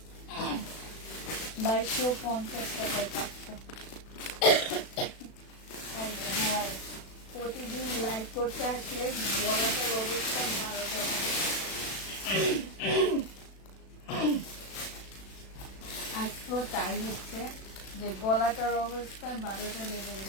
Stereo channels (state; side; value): late; right; 36 ms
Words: 2250 টাকায় পাচ্ছ। প্রতিদিন লাইভ করতে আসলে গলাটার অবস্থা 12টা হবে। আজকেও তাই হচ্ছে যে গলাটার অবস্থা 12টা লেগে